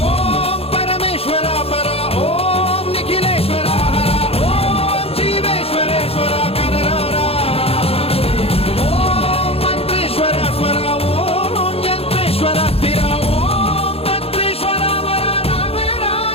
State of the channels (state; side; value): late; right; 0.28 ms